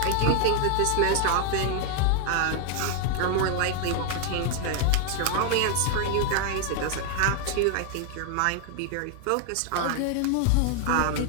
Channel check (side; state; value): both; different; correlation 0.00